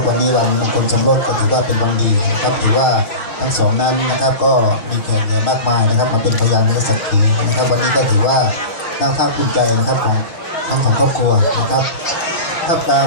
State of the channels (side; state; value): right; late; 5.7 ms